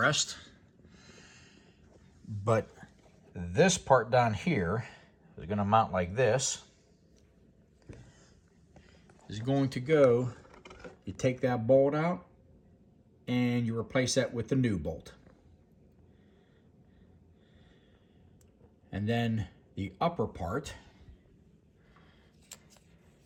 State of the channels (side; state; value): both; identical; correlation 1.00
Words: But this part down here is going to mount like this. Is going to go, you take that bolt out and you replace that with the new bolt. And then the upper part